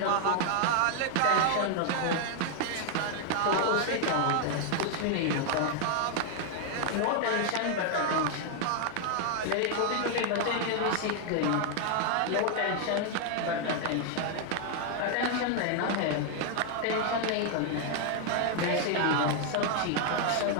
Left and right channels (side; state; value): both; different; correlation 0.00